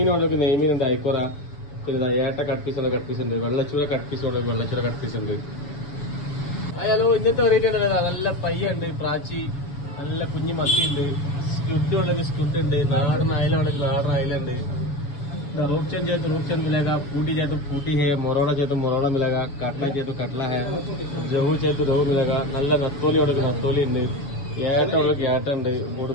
ഉണ്ടെങ്കിൽ നെയ്മീൻ ഉണ്ട്, ഐക്കോറ, പിന്നെ ഏട്ട കട്ട് പീസ് ഉണ്ട്, വെള്ളച്ചൂര കട്ട് പീസ് ഉണ്ടെങ്കിൽ വെള്ളച്ചൂര കട്ട് പീസ് ഉണ്ട്. ഹലോ, ഇന്നത്തെ വെറൈറ്റി ഉണ്ട്. നല്ല പയ്യുണ്ട്, പ്രാച്ചി, നല്ല കുഞ്ഞു മത്തിയുണ്ട്, സ്റ്റുഡ് ഉണ്ടെങ്കിൽ സ്റ്റുഡ് ഉണ്ട്, നാടൻ അയല ഉണ്ടെങ്കിൽ നാടൻ അയലുണ്ട്. रूप चेंज मिलेगा, पूटी चाहिए तो पूटी है, मोरोड़ा चाहिए तो मोरोड़ा मिलेगा, काटला चाहिए तो काटला है, रोहू चाहिए तो रोहू मिलेगा. നല്ല നത്തോലി ഉണ്ടെങ്കിൽ നത്തോലി ഉണ്ട്, ഏട്ട ഉണ്ടെങ്കിൽ ഏട്ട ഉണ്ട്,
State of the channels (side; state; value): right; late; 7.0 ms